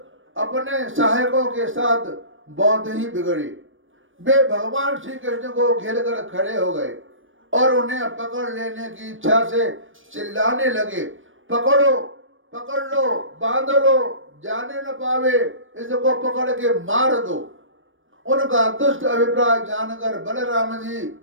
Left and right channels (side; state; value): left; late; 0.57 ms